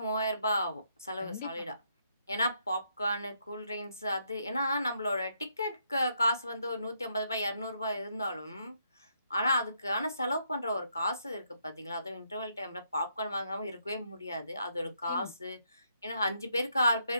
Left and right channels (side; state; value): both; inverted; correlation -0.75